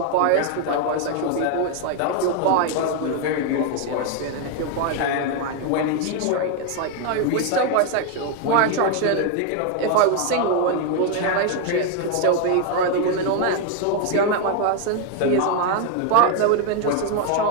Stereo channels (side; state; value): both; different; correlation 0.01